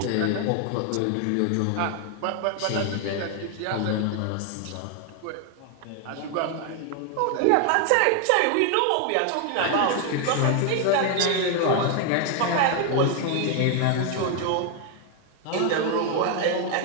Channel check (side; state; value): both; different; correlation 0.00